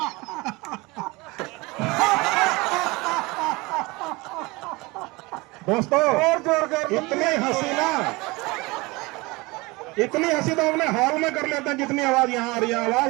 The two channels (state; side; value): quieter; left; 23.9 dB